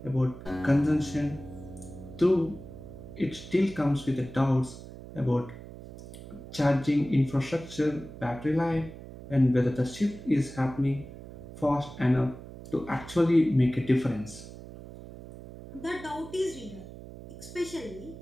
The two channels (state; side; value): noise; right; hum, 14 dB below the sound